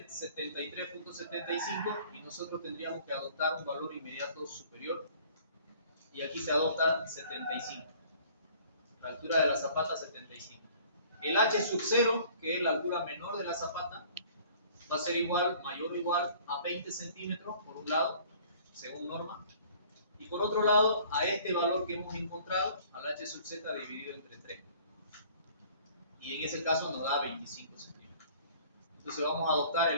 73.75 y nosotros tendríamos que adoptar un valor inmediato superior. Y aquí se adopta 75. La altura de la zapata 75. El h sub 0, que es la altura menor de la zapata, va a ser igual, mayor o igual a 20 centímetros por un lado, según norma. Y por otro lado, a este valor que hemos encontrado, al h sub z dividido entre 3. Y en ese caso nos da 25 centímetros. Entonces vamos a adoptar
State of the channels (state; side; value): inverted; both; correlation -0.52